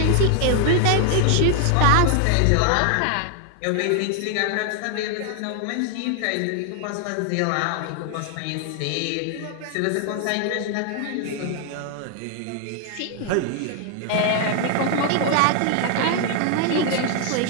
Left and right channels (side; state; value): both; different; correlation 0.00